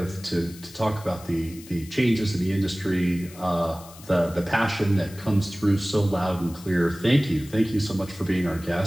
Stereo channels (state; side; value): noise; left; hiss, 19 dB below the sound